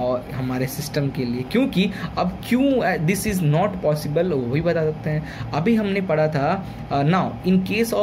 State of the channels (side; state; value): both; identical; correlation 1.00